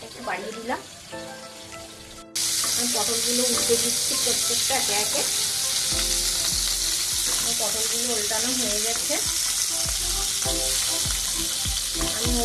একটু বাড়িয়ে দিলাম। আমি পটলগুলো উল্টে দিচ্ছি প্রত্যেকটা একে একে। পটলগুলো উল্টানো হয়ে গেছে। আমি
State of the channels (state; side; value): identical; both; correlation 1.00